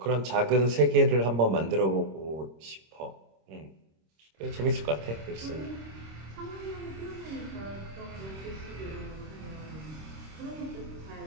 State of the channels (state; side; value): late; left; 26 ms